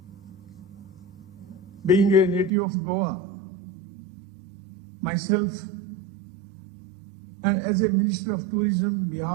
Being a native of Goa, myself, and as a Minister of Tourism on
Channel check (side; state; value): left; drops out; at 2.5 s